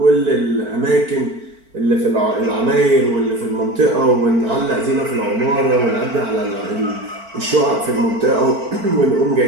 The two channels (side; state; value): left; late; 4.5 ms